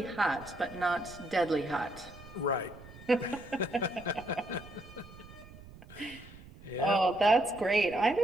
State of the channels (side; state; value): right; noise; rumble, 19 dB below the sound